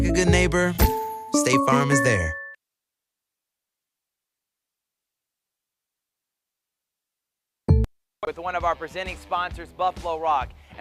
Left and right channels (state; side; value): identical; both; correlation 1.00